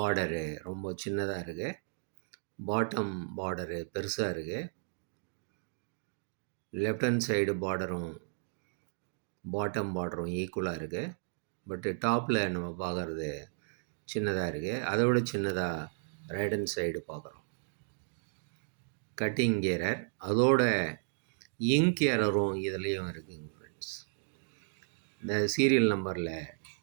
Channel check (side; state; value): left; silent; digital silence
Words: ரொம்ப சின்னதாக இருக்குது, பாட்டம் பார்டரு பெருசாக இருக்குது. லெஃப்ட் ஹேண்ட் சைடு பார்டரும் பாட்டம் பார்டரும் ஈக்குவலாக இருக்குது. பட்டு டாப்பில் நம்ம பார்க்குறது சின்னதாக இருக்குது. அதை விட சின்னதாக ரைட் ஹேண்ட் சைடு பார்க்குறோம். கட்டிங் எரர், அதோட இங்க் எரரும் இதுலேயும் இருக்குங்க ஃப்ரெண்ட்ஸ். இந்த சீரியல் நம்பரில்